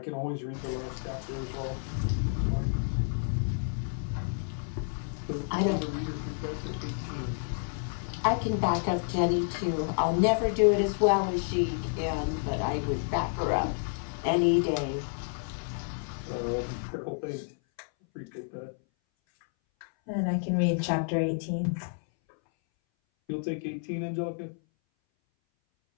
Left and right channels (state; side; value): silent; right; 58 dB below the other